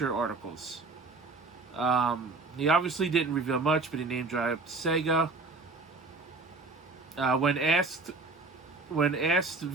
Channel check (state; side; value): quieter; left; 3.8 dB